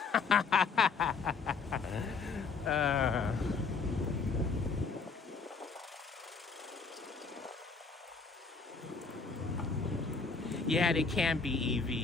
Yeah, they can be,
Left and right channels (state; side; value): quieter; right; 4.8 dB